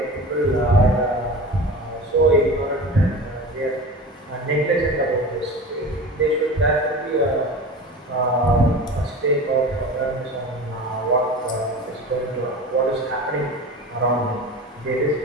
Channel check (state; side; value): normal; both; correlation 0.33